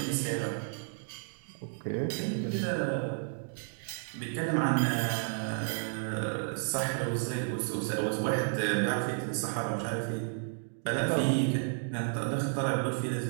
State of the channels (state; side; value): silent; left; digital silence